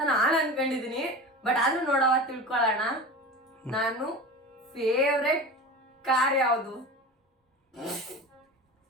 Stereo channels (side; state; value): both; normal; correlation 0.31